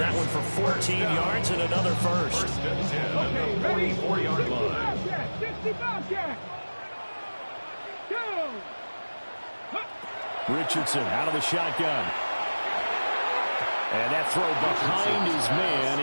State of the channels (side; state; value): both; inverted; correlation -1.00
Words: one for 14 yards and another first. 1st and 10 at the 44-yard line. 65 Jack. Go. Richardson out of the shotgun. And that throw behind his man.